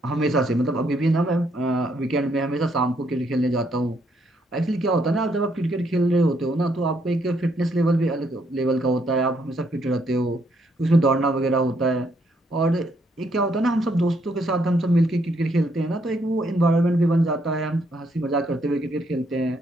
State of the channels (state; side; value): normal; both; correlation 0.72